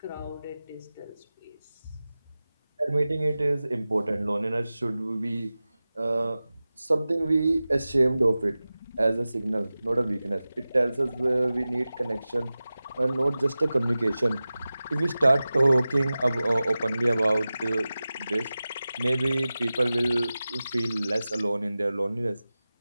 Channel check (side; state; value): both; inverted; correlation -0.96